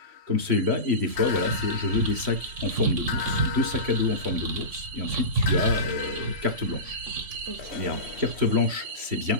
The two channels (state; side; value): late; left; 3.0 ms